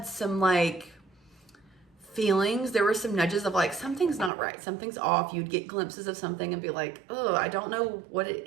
some like feelings, there were some nudges of like, something's not right, something's off. You'd get glimpses of something and be like, oh, I don't know what it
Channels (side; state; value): left; drops out; at 4.3 s